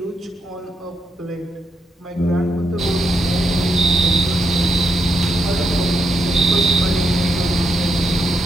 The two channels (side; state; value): both; normal; correlation 0.80